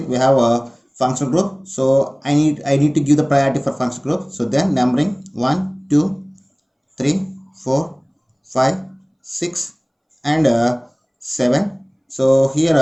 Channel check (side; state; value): both; identical; correlation 1.00